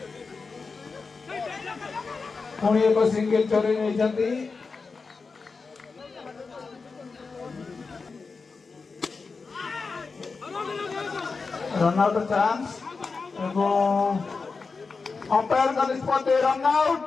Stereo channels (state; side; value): quieter; right; 4.5 dB